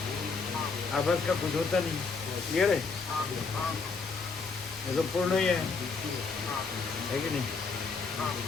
आभास का कुछ होता नहीं। क्लियर है? ये तो पूर्ण ही है कि नहीं?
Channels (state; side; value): quieter; right; 4.6 dB